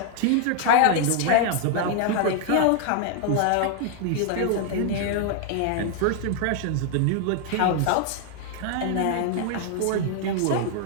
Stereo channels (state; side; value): different; both; correlation 0.00